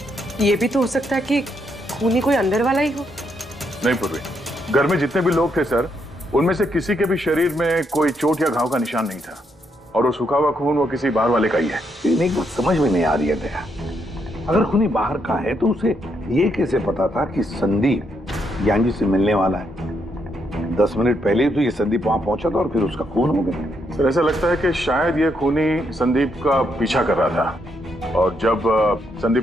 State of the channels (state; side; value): normal; both; correlation 0.77